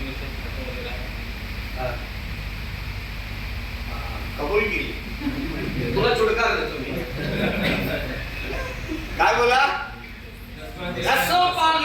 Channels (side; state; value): both; identical; correlation 1.00